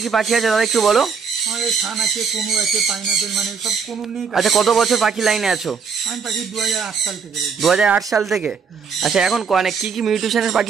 কি পাখি আছে দাদা একটু বলো। আচ্ছা কত বছর পাখি লাইনে আছো? 2008 সাল থেকে। আচ্ছা এখন কি কি মিউটেশনের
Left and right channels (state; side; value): quieter; left; 5.9 dB